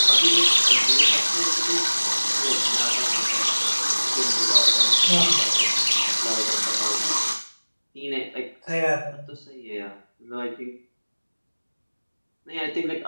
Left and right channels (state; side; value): inverted; both; correlation -1.00